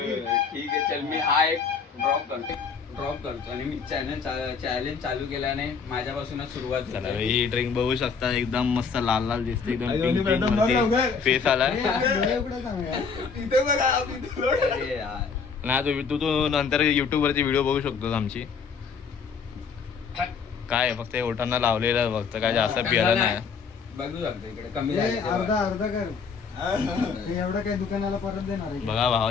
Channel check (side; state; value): right; quieter; 5.7 dB